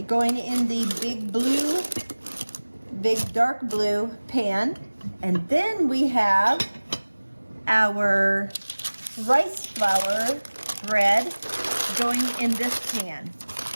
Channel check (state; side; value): inverted; both; correlation -1.00